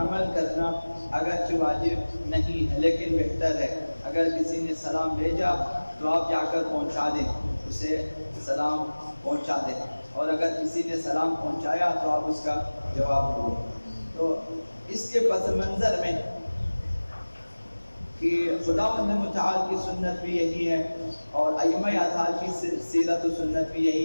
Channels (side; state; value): both; inverted; correlation -1.00